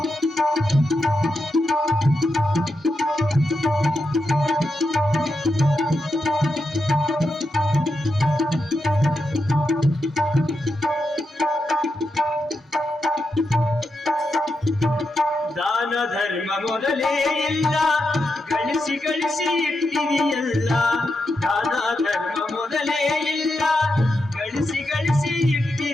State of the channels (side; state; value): both; normal; correlation 0.86